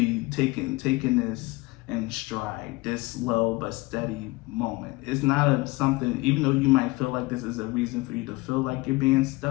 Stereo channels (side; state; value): right; quieter; 22.6 dB